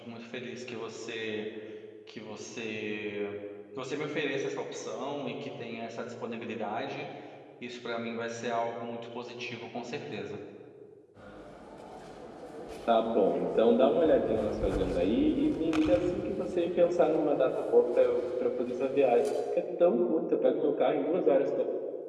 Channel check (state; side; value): identical; both; correlation 1.00